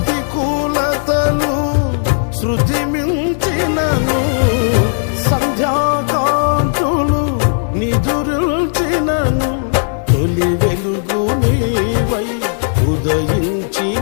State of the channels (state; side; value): silent; right; 68 dB below the other